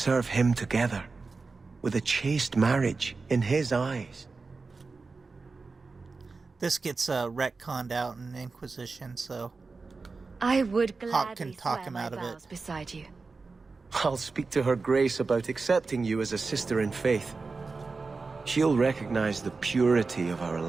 him together, with a chaste marriage in his eyes. This gets retconned out in Inquisition, so I would Hawke gladly can talk swear him my out of it. vows beside you. I'll speak to her Grace about accepting you as a sister in faith. She'll recognize the purity of our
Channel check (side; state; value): left; quieter; 4.1 dB